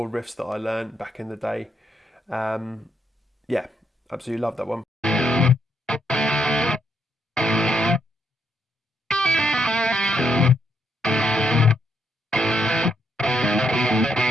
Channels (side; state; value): both; normal; correlation 0.77